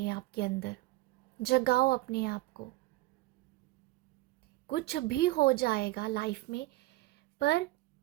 आपके अंदर। जगाओ अपने आप को। कुछ भी हो जाएगा लाइफ में, पर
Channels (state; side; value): quieter; left; 18.7 dB